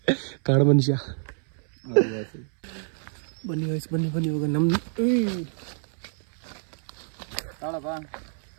ಕಾಡು ಮನುಷ್ಯ. ಬನ್ನಿ ಗಾಯ್ಸ್, ಬನ್ನಿ ಇವಾಗ ನಮ್ಮ ತಾಳಪ್ಪ.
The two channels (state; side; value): silent; left; 58 dB below the other